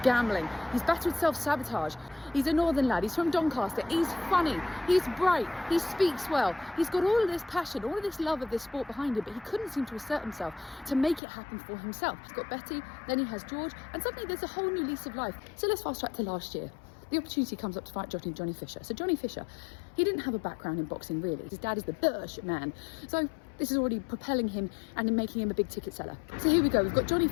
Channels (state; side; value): drops out; right; at 11.2 s